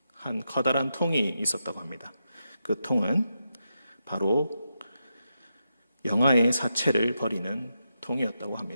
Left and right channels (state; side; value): inverted; both; correlation -0.86